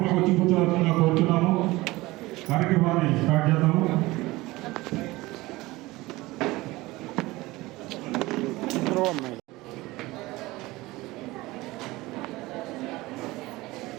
వచ్చి కూర్చోవలసిందిగా కోరుతున్నాము. కార్యక్రమాన్ని స్టార్ట్ చేద్దాము.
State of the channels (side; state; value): left; quieter; 20.1 dB